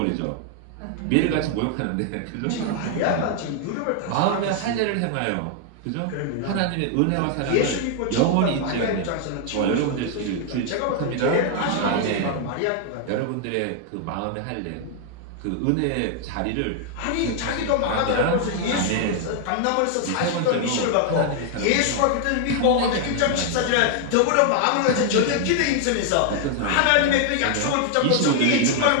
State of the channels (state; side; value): different; both; correlation 0.00